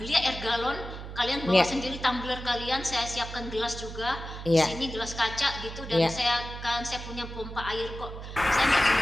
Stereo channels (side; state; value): right; noise; hum, 10 dB below the sound